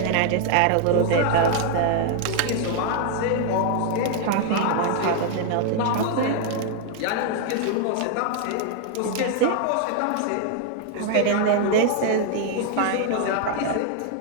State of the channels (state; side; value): different; both; correlation 0.00